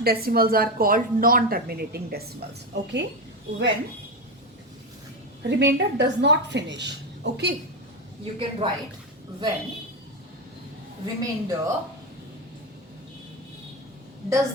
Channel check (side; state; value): both; normal; correlation 0.14